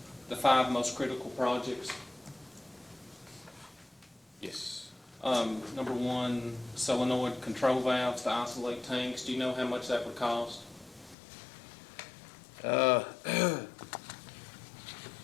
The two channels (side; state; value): right; drops out; at 11.2 s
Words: 5 most critical projects, Yes. number 1, solenoid control valves to isolate tanks. Do you know how much that would cost?